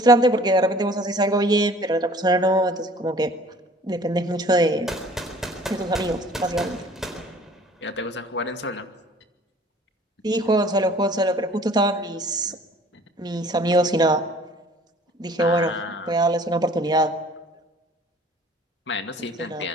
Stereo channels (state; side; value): normal; both; correlation 0.51